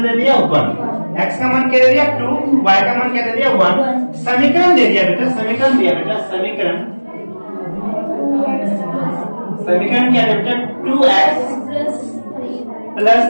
दे दिया? 1। x का मान क्या दे दिया? 2, y का मान क्या दे दिया? 1। समीकरण दे दिया बेटा, समीकरण दिया बेटा, समीकरण क्या है बेटा? 2x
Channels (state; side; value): inverted; both; correlation -1.00